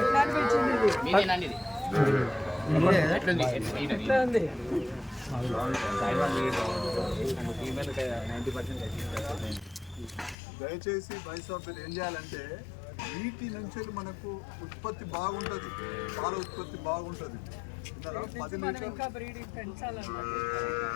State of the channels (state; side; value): drops out; right; at 10.4 s